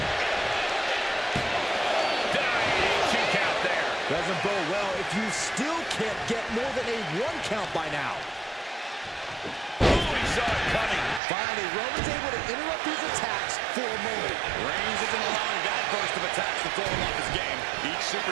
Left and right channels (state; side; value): drops out; left; at 11.2 s